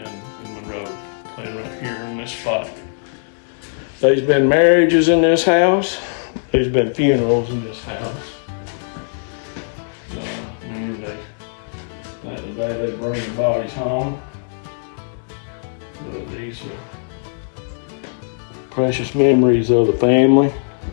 and Monroe playing right here in this spot. There's been marriages in this house. There's been funerals in this house. That they bring the bodies home. But these are precious memories of the family.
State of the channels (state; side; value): silent; right; digital silence